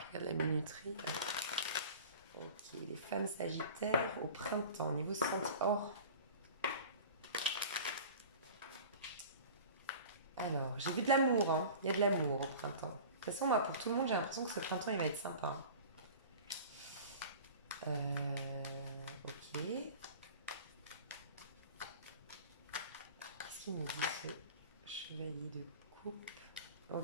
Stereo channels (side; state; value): both; inverted; correlation -0.39